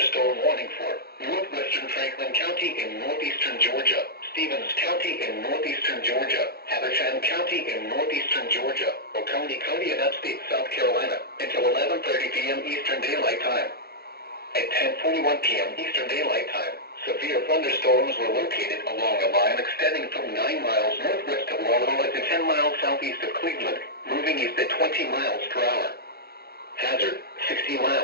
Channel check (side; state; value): right; late; 0.45 ms